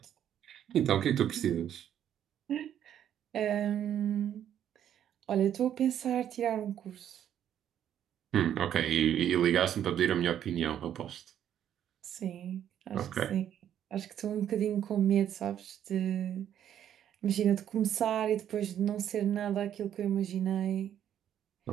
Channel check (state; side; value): quieter; left; 10.2 dB